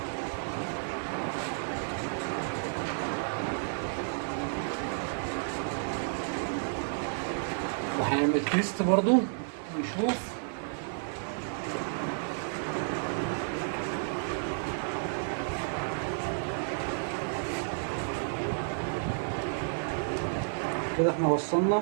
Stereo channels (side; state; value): left; silent; 55 dB below the other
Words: وهنعمل تيست برضو ونشوف. كده احنا وصلنا